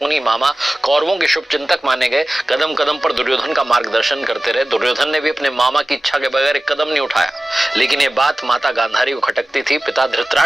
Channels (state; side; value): normal; both; correlation 0.96